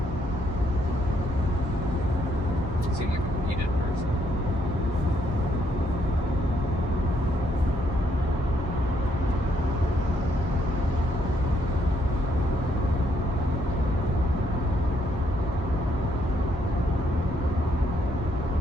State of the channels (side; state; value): both; normal; correlation 0.72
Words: Seem like a needed person.